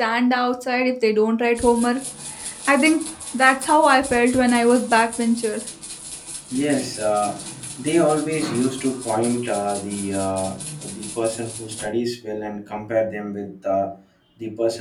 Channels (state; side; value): identical; both; correlation 1.00